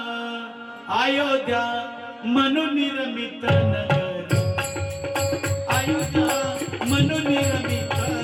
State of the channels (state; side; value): identical; both; correlation 1.00